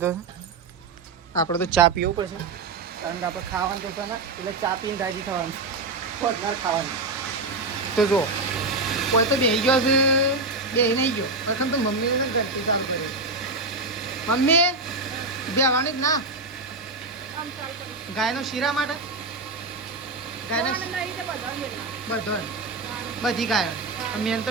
છે. આપણે તો ચા પીવું પડશે કારણ કે આપણે ખાવાનું તો છે ને એટલે ચા પીને રાજી થવાનું, ખોટનાર ખાવાનું. તો જો કોઈ તો બેસી ગયો છે, બેસી નહીં ગયો પ્રથમ તો મમ્મીને તો ઘંટી ચાલુ કરી. મમ્મી બેવાની જ ના ગાયનો શીરા માટે, ગાયના બધો બધી ગાયો મેન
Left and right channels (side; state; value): left; quieter; 3.5 dB